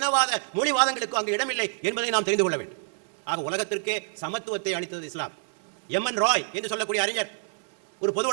மொழிவாதங்களுக்கோ அங்கு இடமில்லை என்பதை நாம் தெரிந்து கொள்ள வேண்டும். ஆக உலகத்திற்கே சமத்துவத்தை அளித்தது இஸ்லாம். எம்என் ராய் என்று சொல்லக்கூடிய அறிஞர், ஒரு பொது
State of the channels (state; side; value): silent; left; digital silence